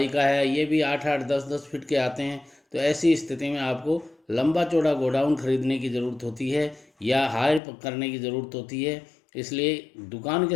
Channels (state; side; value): drops out; right; at 7.6 s